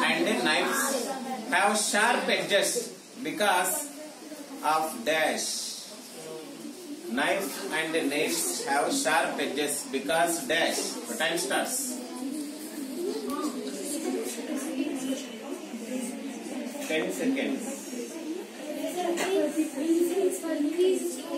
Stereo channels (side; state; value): both; identical; correlation 1.00